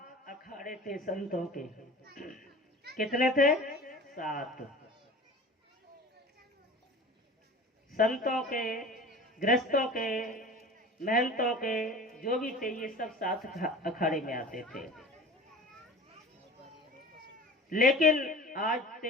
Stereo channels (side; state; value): both; normal; correlation 0.39